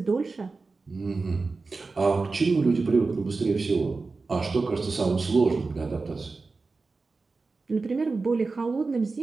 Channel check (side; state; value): left; quieter; 4.0 dB